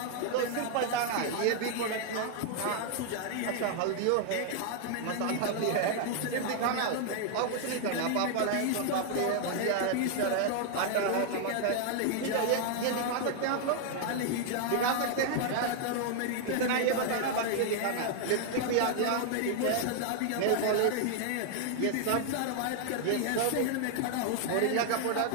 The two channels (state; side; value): different; both; correlation 0.00